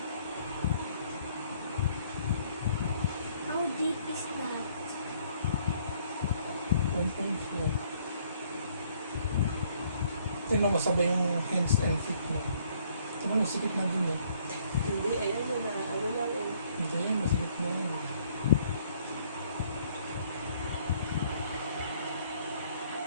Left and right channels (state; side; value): inverted; both; correlation -0.64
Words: How deep is that? Tingnan mo sabay yung hands and feet mo. Tingnan mo, sikip na din eh. Hindi, ayan yun na, ano lang eh. Ito yun, masikip na yan.